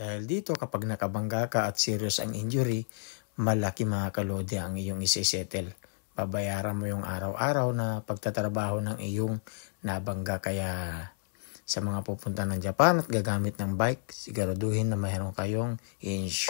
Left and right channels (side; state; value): right; silent; digital silence